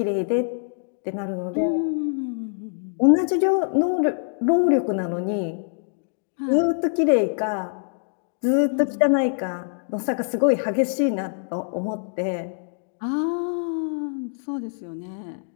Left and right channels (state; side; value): silent; right; digital silence